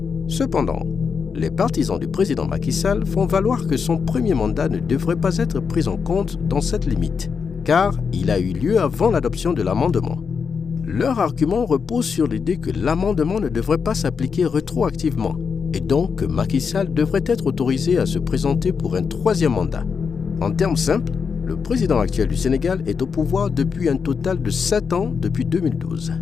Cependant, les partisans du président Macky Sall font valoir que son premier mandat ne devrait pas être pris en compte dans cette limite, car il a eu lieu avant l'adoption de l'amendement. Leur argument repose sur l'idée que l'amendement ne devrait pas s'appliquer rétroactivement et donc que Macky Sall devrait être autorisé à se présenter pour un troisième mandat. En termes simples, le président actuel du Sénégal est au pouvoir depuis un total de 7 ans depuis 2012.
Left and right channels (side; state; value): right; quieter; 5.9 dB